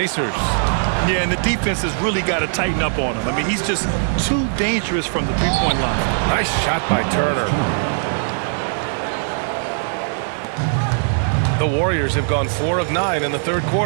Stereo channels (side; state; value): left; silent; digital silence